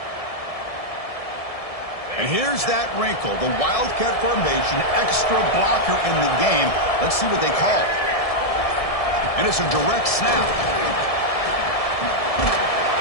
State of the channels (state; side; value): late; right; 1.7 ms